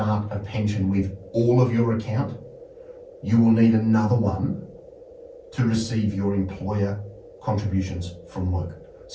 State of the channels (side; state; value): both; identical; correlation 1.00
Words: a pension with all of your account, you will need another one to receive your employer contributions from work.